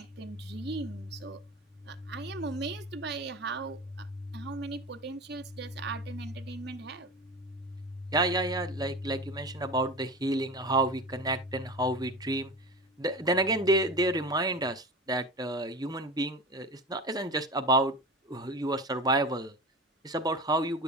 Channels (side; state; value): both; normal; correlation 0.30